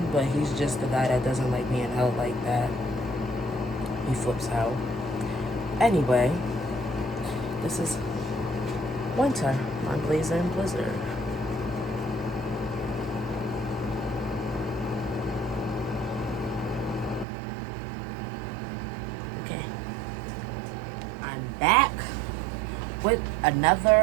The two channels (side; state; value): left; drops out; at 17.2 s